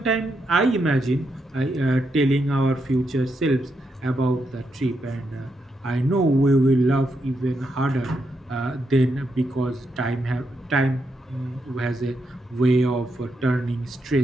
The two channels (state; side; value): normal; both; correlation 0.82